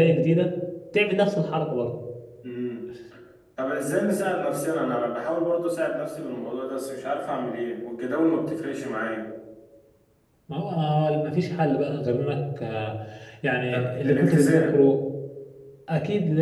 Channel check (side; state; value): both; identical; correlation 1.00